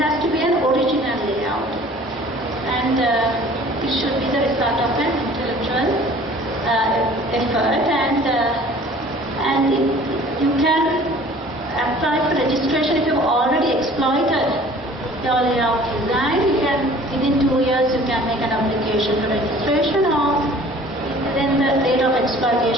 to be an original layout, and it should be the result of an intellectual effort, and you can apply for registration if you've already exploited your layout design. You can, within 2 years, you can make an application for registration, or then the date of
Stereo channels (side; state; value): both; normal; correlation 0.49